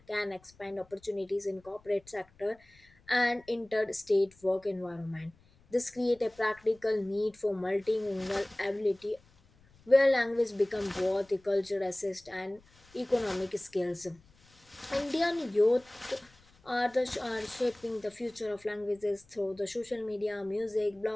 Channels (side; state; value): left; noise; rumble, 29 dB below the sound